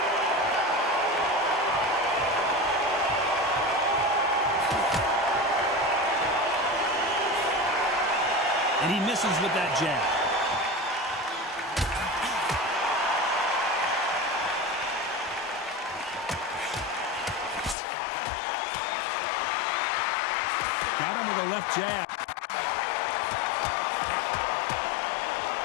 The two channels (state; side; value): drops out; right; at 17.8 s